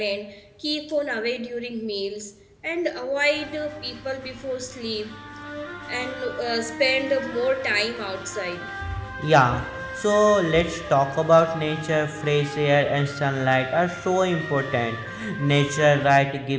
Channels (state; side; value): identical; both; correlation 1.00